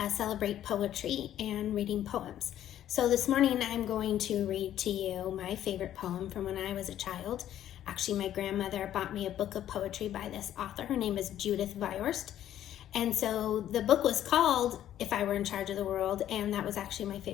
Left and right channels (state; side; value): quieter; right; 11.6 dB